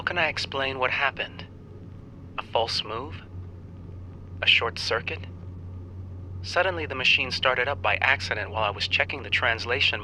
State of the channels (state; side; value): identical; both; correlation 1.00